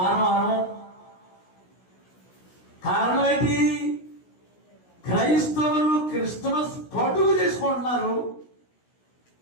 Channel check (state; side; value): late; right; 16 ms